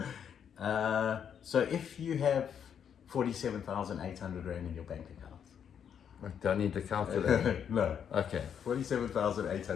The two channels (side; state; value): right; quieter; 8.1 dB